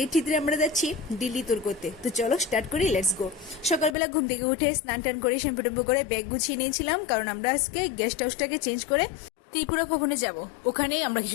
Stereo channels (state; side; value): drops out; right; at 4.0 s